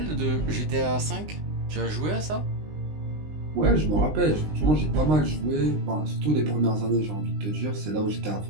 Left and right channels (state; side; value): late; left; 20 ms